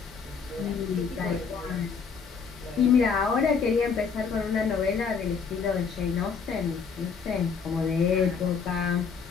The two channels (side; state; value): right; quieter; 5.9 dB